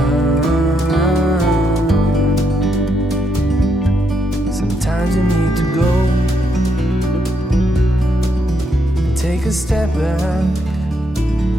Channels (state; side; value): normal; both; correlation 0.77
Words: Sometimes you need to go and take a step back